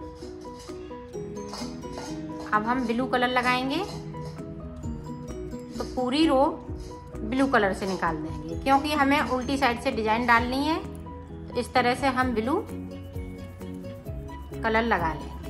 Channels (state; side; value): identical; both; correlation 1.00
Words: अब हम ब्लू कलर लगाएंगे। तो पूरी रो ब्लू कलर से निकाल देंगे, क्योंकि हमें उल्टी साइड से डिजाइन डालनी है। तो इस तरह से हम ब्लू कलर लगा लेंगे।